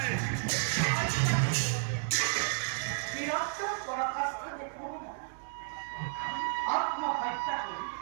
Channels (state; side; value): silent; left; digital silence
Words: বীরত্ব পরাকাষ্ঠা দেখব না আত্মহত্যা করি